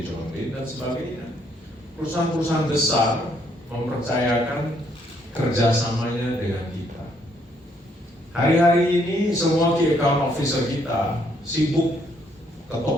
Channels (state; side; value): normal; both; correlation 0.70